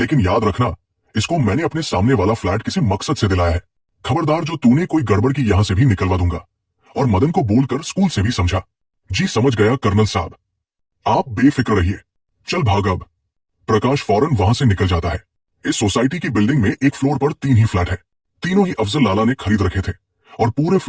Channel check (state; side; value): identical; both; correlation 1.00